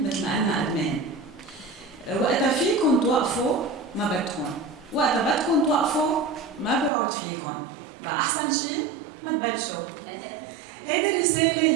مثل ما قلنا ادمان. وقتها فيكم توقفوا ما بدكم، وقتها بدكم توقفوا ما بيعود فيكم. بقى احسن شيء ما تبلشوا. هيدي الرسالة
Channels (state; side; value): drops out; left; at 6.9 s